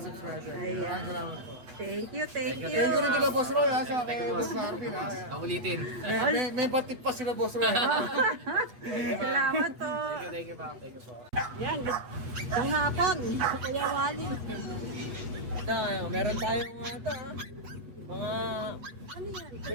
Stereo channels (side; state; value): left; late; 8.2 ms